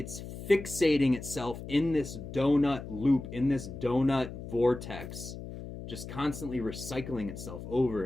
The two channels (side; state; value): left; noise; hum, 10 dB below the sound